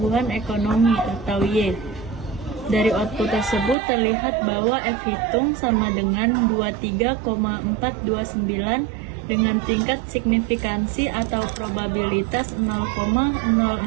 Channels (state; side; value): drops out; left; at 3.8 s